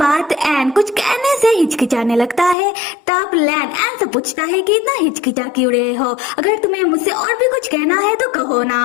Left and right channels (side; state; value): right; drops out; at 2.6 s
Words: एन कुछ कहने से हिचकिचाने लगता है। तब लैन एन से पूछता है कि इतना हिचकिचा क्यों रहे हो, अगर तुम्हें मुझसे और भी कुछ कहना है तो कहो